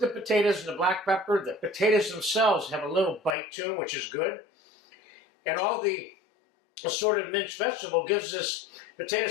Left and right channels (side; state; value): right; drops out; at 3.4 s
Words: potatoes in the black pepper. The potatoes themselves have a little bite to them, which is good. And all the assorted minced vegetable gives this potato